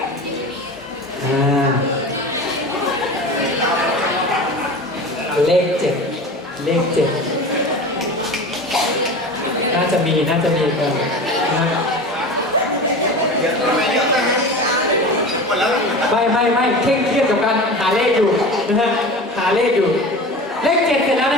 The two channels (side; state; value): both; normal; correlation 0.32